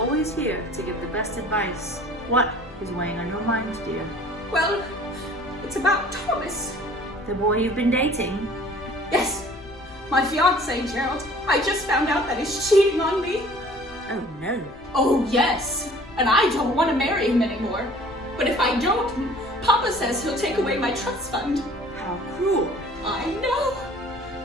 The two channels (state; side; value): noise; left; rumble, 21 dB below the sound